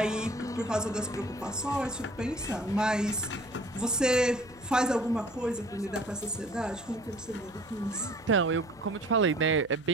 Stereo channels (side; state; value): left; noise; hum, 24 dB below the sound